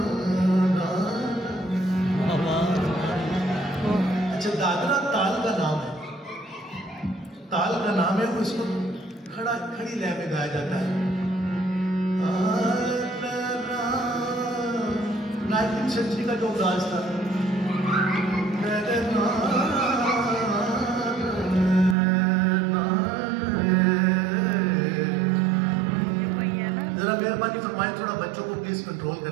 अच्छा, दादरा ताल का नाम है, ताल का नाम है, उसको खड़ी लय में गाया जाता है। 19वीं सेंचुरी का जो अंदाज था, जरा मेहरबानी फरमाए थोड़ा बच्चों को प्लीज कंट्रोल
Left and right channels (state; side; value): drops out; left; at 22.0 s